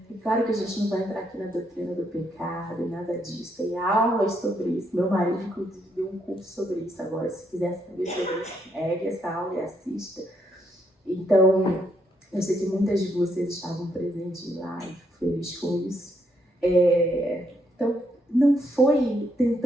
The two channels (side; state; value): both; normal; correlation 0.75